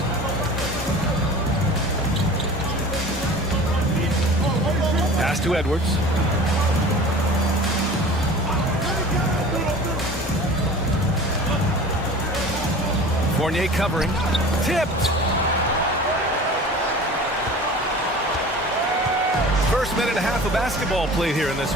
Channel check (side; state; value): both; normal; correlation 0.40